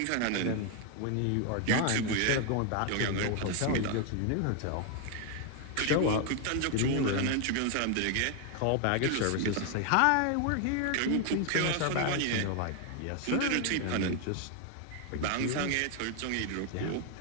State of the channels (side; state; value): both; different; correlation 0.01